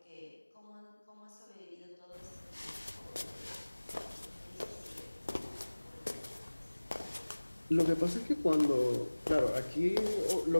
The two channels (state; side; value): inverted; both; correlation -1.00